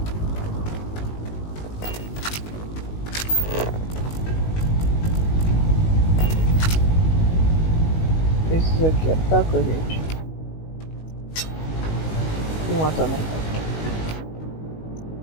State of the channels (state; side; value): late; right; 19 ms